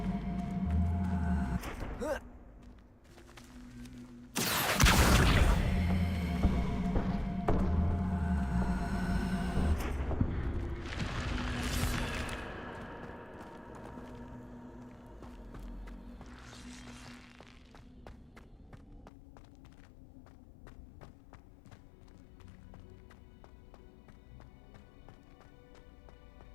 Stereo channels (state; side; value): drops out; right; at 19.1 s